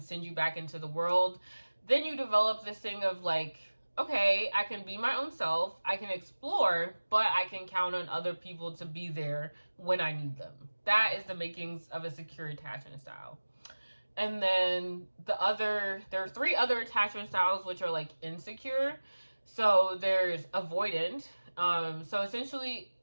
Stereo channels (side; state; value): both; inverted; correlation -1.00